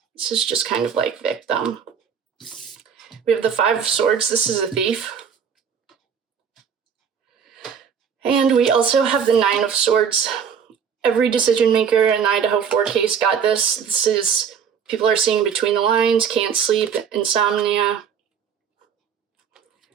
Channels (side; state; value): left; quieter; 7.2 dB